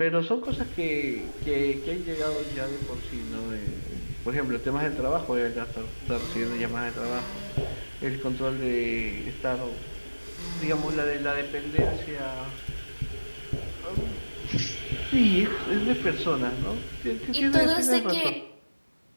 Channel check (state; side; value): inverted; both; correlation -1.00